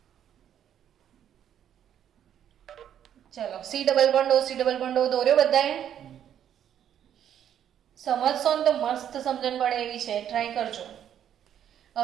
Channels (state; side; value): quieter; left; 9.8 dB